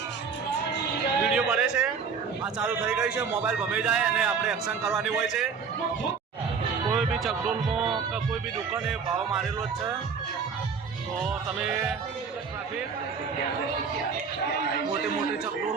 વિડીયો બને છે. આ ચાલુ થઈ ગઈ છે, મોબાઈલ ભમી જાય અને આપણે એક્શન કરવાની હોય છે. કોઈ બી ચકડોલમાં કે કોઈ બી દુકાને ભાવ મારેલો જ છે, તો તમે ટ્રાફિક મોટી મોટી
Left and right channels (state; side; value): quieter; left; 5.9 dB